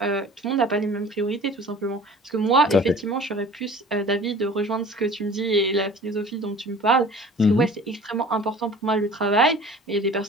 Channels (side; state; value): both; normal; correlation 0.45